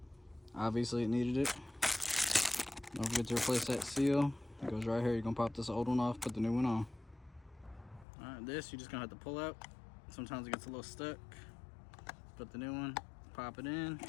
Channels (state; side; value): drops out; right; at 8.1 s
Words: Obviously it needed it. Don't forget to replace that seal. It goes right here. You're gonna pop this old one off, put the new one on. Alright, this you're just gonna have to pull out. Sometimes it gets a little stuck. Put the new one, pop it in.